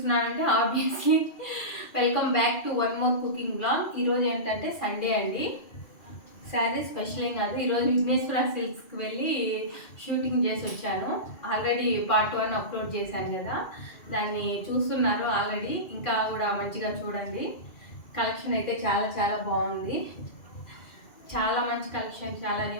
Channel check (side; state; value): right; late; 2.4 ms